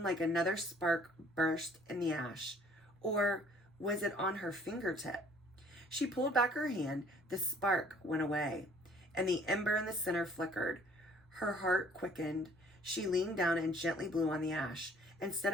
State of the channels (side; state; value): both; normal; correlation 0.57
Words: like another spark burst in the ash. Or was it on her fingertip? She pulled back her hand. The spark went away, and the ember in the center flickered. Her heart quickened. She leaned down and gently blew on the ash. Instead